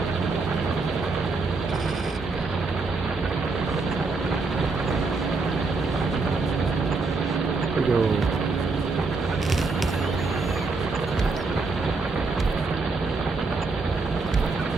There we go.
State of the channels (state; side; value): quieter; left; 3.9 dB